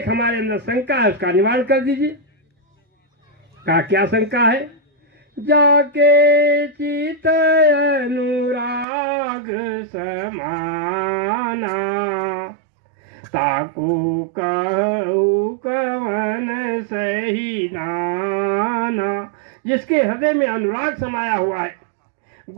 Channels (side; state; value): left; drops out; at 8.8 s